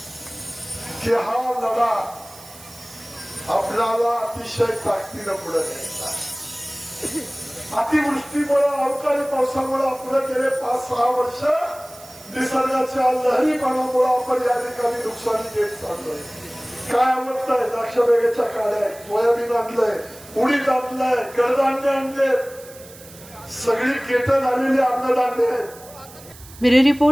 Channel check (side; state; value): right; noise; hiss, 20 dB below the sound